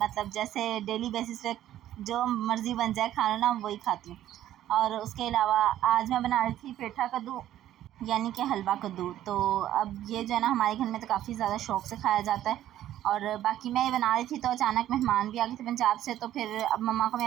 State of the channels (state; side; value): quieter; left; 12.6 dB